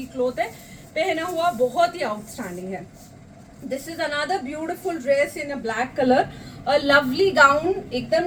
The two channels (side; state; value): both; identical; correlation 1.00